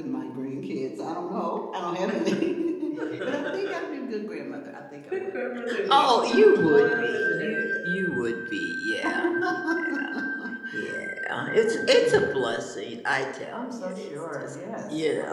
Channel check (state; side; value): identical; both; correlation 1.00